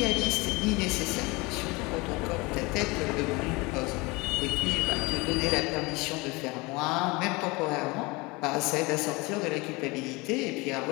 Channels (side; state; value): right; quieter; 24.9 dB